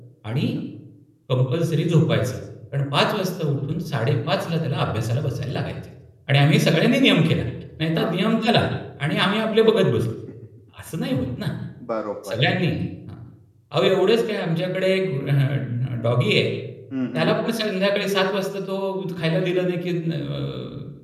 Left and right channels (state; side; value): identical; both; correlation 1.00